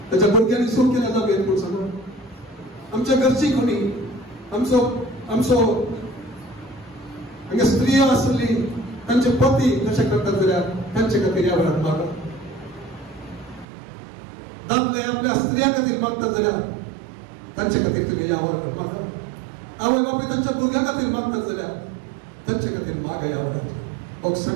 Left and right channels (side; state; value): left; drops out; at 13.7 s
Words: ताच्या भुरग्यांनी सूख केल्या जावेत म्हूण सांगून आमच्या घरची कोणी आमचो हांगा स्त्रियो आसली तांचे पती तशें करतात जाल्यार तांचे खातीर ह्या वेळार मागप दादले आपल्या स्त्रियां खातीर मागतात जाल्यार तांचे खातीर तुमी ह्या वेळार मागा आवय बापूय तांच्या भुरग्यां खातीर मागतात जाल्यार तांचे खातीर मागा ह्या वेळार